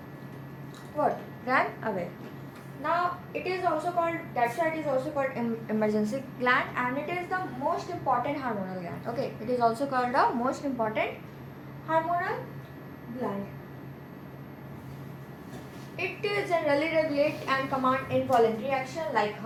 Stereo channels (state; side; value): identical; both; correlation 1.00